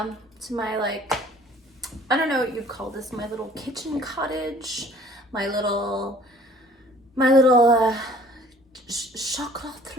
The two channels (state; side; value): normal; both; correlation 0.53